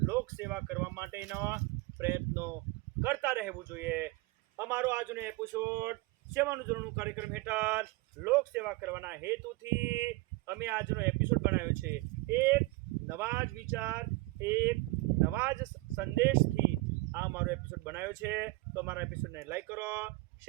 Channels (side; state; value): left; quieter; 22.4 dB